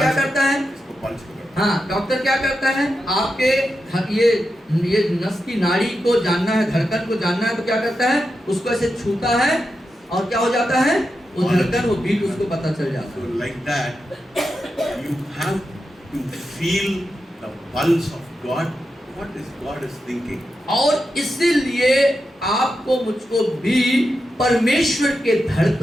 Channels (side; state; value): both; normal; correlation 0.88